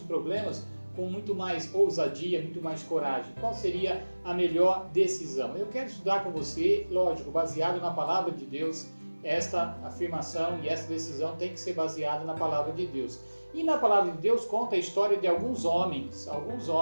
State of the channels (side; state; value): both; inverted; correlation -1.00